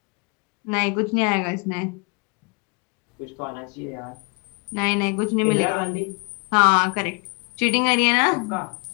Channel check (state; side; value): quieter; right; 31.7 dB